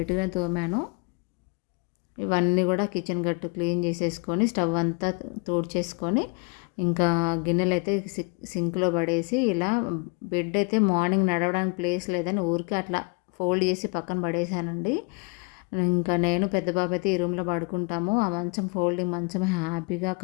తోమాను. ఇవన్నీ కూడా కిచెన్ గట్టు క్లీన్ చేసేసుకొని, స్టవ్ అంతా తుడిచేసుకొని, ఇంకా గిన్నెలైతే సింక్‌లో పడేసి, ఇలా బెడ్ అయితే మార్నింగ్ నడవడానికి ప్లేస్ లేదని ఊరికే అట్లా ఫోల్డ్ చేసి పక్కన పడేసానండి. ఇంకా నేను పెద్ద బాబు అయితే ఈ రూమ్‌లో పడుకుంటాము. ఆ మంచం ఫోల్డింగ్ మంచం హ్యాపీగా,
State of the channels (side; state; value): right; quieter; 31.8 dB